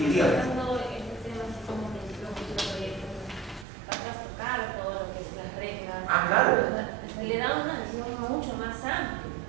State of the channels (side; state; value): left; drops out; at 3.7 s